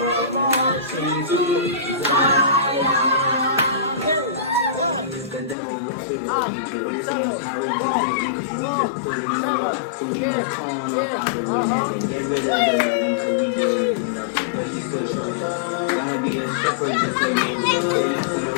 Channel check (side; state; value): right; drops out; at 5.6 s